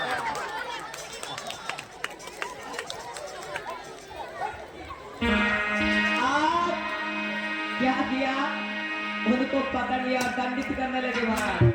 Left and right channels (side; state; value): both; identical; correlation 1.00